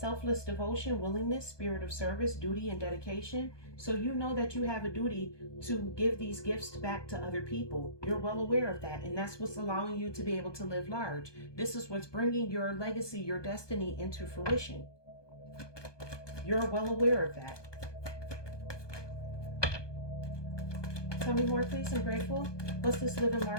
devotion, willingness, spirit of service, duty, and dedication. So you know that you have a duty to give these gifts back to other people. You're well aware of that, and that's what's allowing you to be able to live large. This is what's bringing your legacy, your destiny into fruition. You're well aware of that. Tell me more, please. I'm grateful. What's this living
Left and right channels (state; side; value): late; right; 1.2 ms